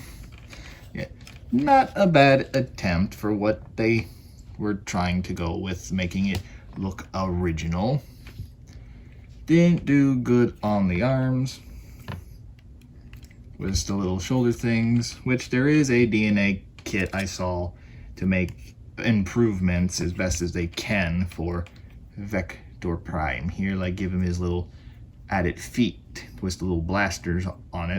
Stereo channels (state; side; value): identical; both; correlation 1.00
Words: Yeah, not a bad attempt for what they were trying to go with, making it look original. Didn't do good on the arms. with the little shoulder things, which there is a DNA kit I saw to make improvements as best as they can for Vector Prime. Here, like, give him his little added feet with the little blasters on